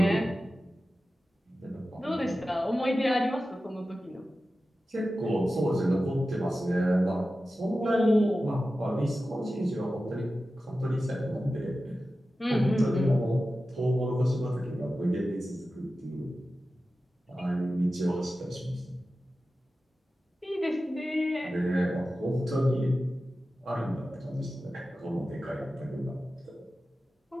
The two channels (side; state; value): both; normal; correlation 0.94